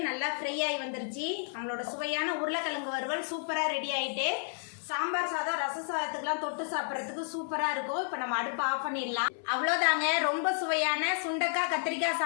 நல்லா ஃப்ரை ஆகி வந்துருச்சு நம்மளோட சுவையான உருளைக்கிழங்கு வறுவல் சூப்பராக ரெடி ஆகிட்டு சாம்பார் சாதம் ரச சாதத்துக்குலாம் தொட்டு சாப்பிட்றதுக்கு சூப்பராக இருக்கும் இப்போ நம்ம அடுப்பு ஆஃப் பண்ணிடலாம் அவ்வளோதாங்க ரொம்ப சுவையான சுண்டக்காய் கத்திரிக்காய்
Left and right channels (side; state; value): right; silent; 57 dB below the other